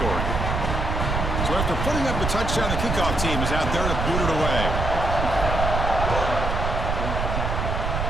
So after putting up a touchdown, the kickoff team is out there to boot it away.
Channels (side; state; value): right; noise; rumble, 1 dB below the sound